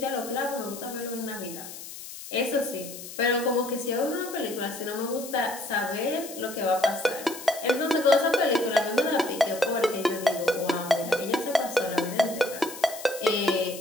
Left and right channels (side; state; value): left; noise; hiss, 12 dB below the sound